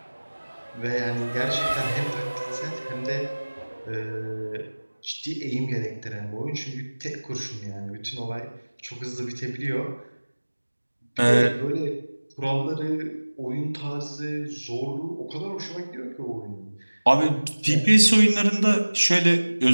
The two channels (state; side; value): inverted; both; correlation -1.00